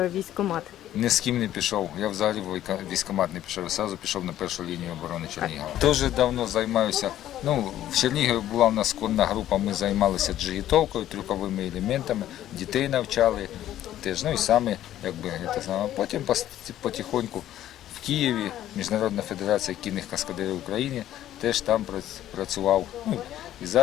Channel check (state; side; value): quieter; right; 12.5 dB